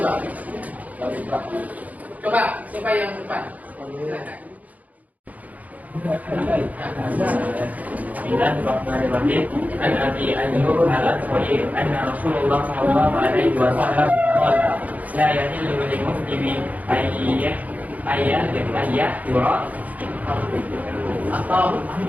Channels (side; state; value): left; late; 0.076 ms